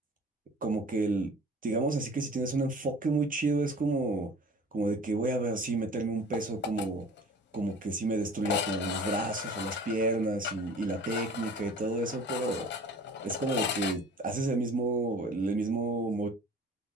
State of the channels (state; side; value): normal; both; correlation 0.45